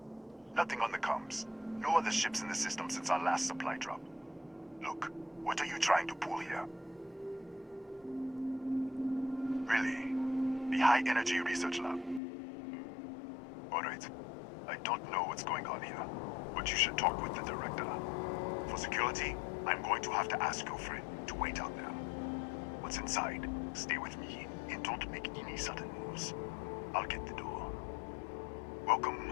Nothing on the comms. No other ships in the system since our last supply drop. Look, what are you trying to pull here? Really? The High Energy Research Lab? Alright. I don't know what's going on here, but you should talk with the director. For security, I'm going to have to ask your friend to wait out there. What's inside, stay with me, and don't make any sudden moves. I'll get the door. Welcome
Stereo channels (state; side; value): drops out; right; at 12.2 s